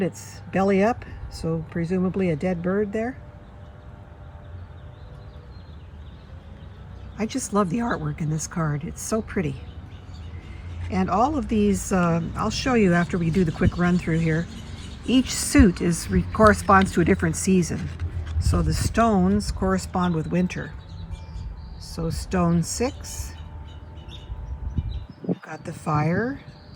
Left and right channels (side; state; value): both; identical; correlation 1.00